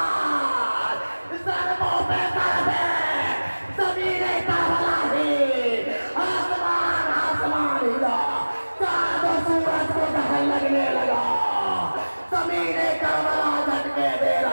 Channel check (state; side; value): inverted; both; correlation -1.00